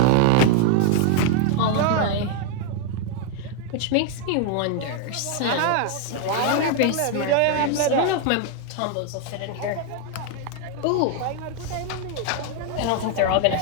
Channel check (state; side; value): different; both; correlation 0.00